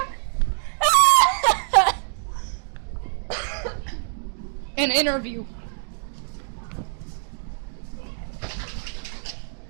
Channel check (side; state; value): left; silent; digital silence